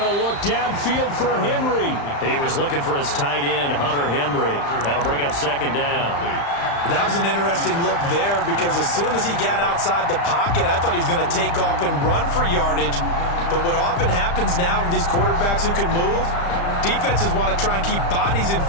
to look downfield for Henry. He was looking for his tight end, Hunter Henry. That'll bring up 2nd down. That was an interesting look there because as soon as he got outside the pocket, I thought he was going to take off and run for yardage. But what often happens now with these quarterbacks who can move, defenses want to try and keep bodies in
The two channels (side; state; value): right; late; 35 ms